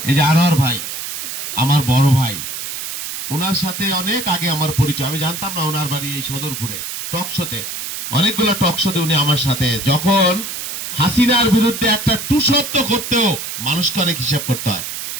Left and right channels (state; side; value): noise; right; hiss, 6 dB below the sound